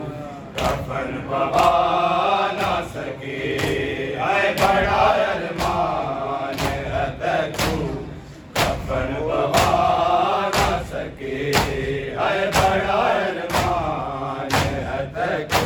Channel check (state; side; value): identical; both; correlation 1.00